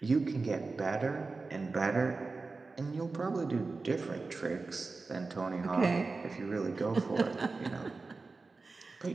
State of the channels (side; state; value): left; quieter; 3.9 dB